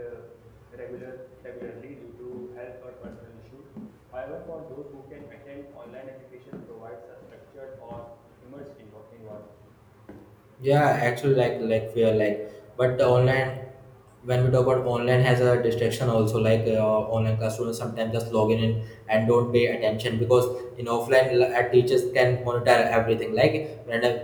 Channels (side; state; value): both; identical; correlation 1.00